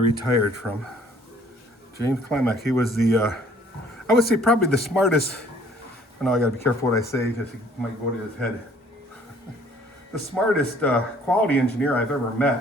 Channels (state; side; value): normal; both; correlation 0.57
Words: from. James Klimek, he was I would say probably the smartest, I know I gotta be careful what I say because it might go to his head. The smartest quality engineer I've ever